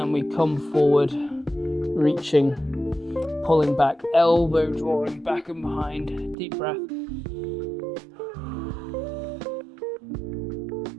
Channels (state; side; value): drops out; left; at 6.4 s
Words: we come forward, reaching, pulling back, elbow drawing back and behind. Deep breath.